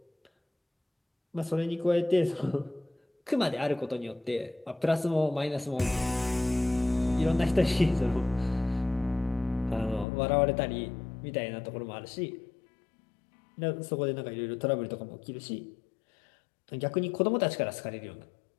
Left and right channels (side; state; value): right; drops out; at 10.1 s